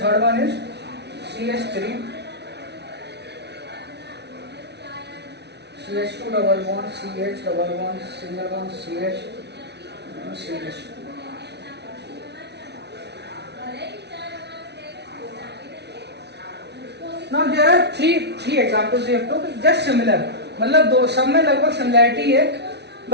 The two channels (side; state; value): left; late; 0.50 ms